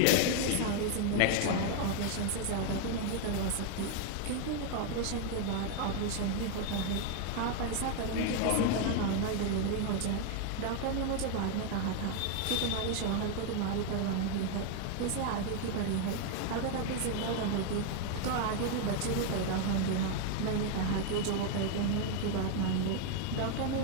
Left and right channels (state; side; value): different; both; correlation 0.00